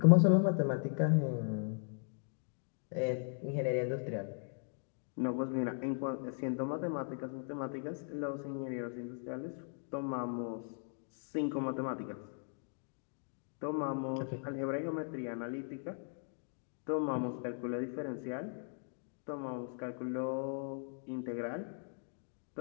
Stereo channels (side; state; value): right; silent; 52 dB below the other